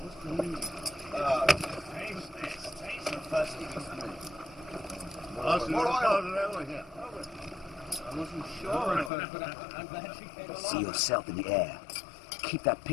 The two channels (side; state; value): right; drops out; at 9.1 s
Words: See yourself in the air. Keep that